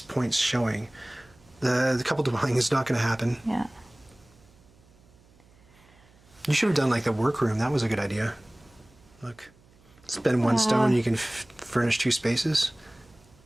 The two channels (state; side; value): noise; right; hum, 29 dB below the sound